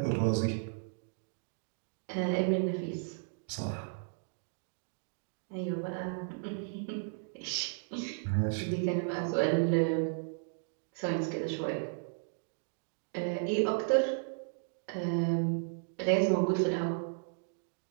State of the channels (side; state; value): left; silent; digital silence